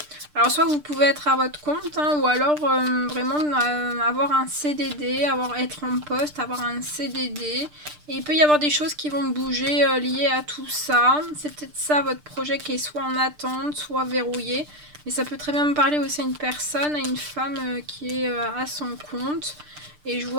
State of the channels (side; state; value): left; late; 6.7 ms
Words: Alors, soit vous pouvez être à votre compte, hein, ou alors vraiment avoir un CDD, être en poste, avoir un CDD. Et il peut y avoir des choses qui vont bouger liées à tout ça. C'est peut-être ça votre projet qui est soit en attente, soit verrouillé. Mais ça peut très bien me parler aussi à une personne, à une femme qui est à son compte. Et je